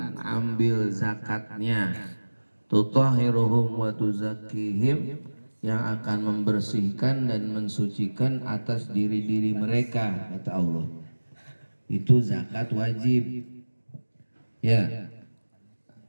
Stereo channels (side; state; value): both; inverted; correlation -1.00